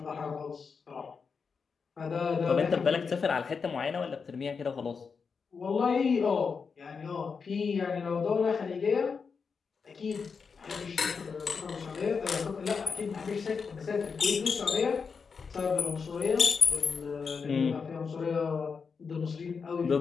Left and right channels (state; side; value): quieter; right; 5.5 dB